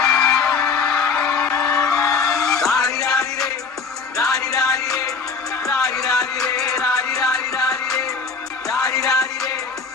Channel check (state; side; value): quieter; right; 4.9 dB